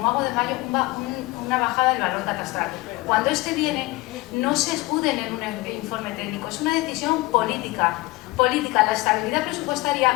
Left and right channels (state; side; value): quieter; right; 21.0 dB